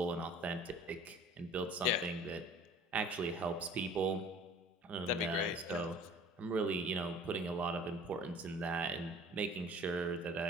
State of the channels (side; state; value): both; normal; correlation 0.46